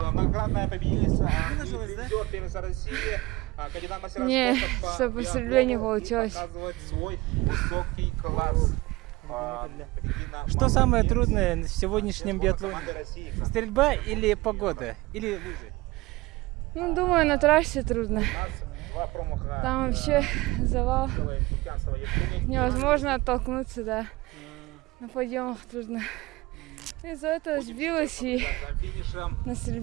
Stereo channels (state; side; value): quieter; left; 20.9 dB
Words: Многократная победительница. Не, что по стрельбе не получилось. Что самое трудное в сегодняшнем биатлоне? Стрельба или погода? Или лыжи? Ну, думаю, на трассе трудно. Там вообще завал. Невозможно оттолкнуться, да. На подъемах трудно. Из-за этого сбилась и на